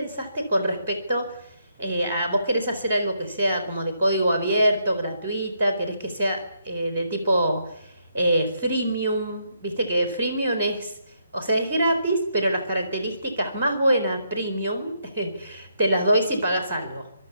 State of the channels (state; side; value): inverted; both; correlation -0.76